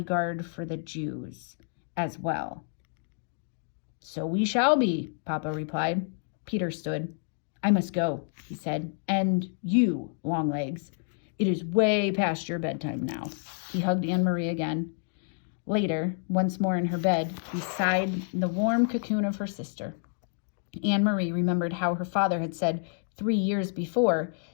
for the Jews as well. So we shall be, Papa replied. Peter stood. I must go, he said. And you, Longlegs. It is way past your bedtime now. He hugged Anne-Marie again. Later, once more in her bed, beside the warm cocoon of her sister, Anne-Marie remembered how her father had said 3 years before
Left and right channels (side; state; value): right; silent; digital silence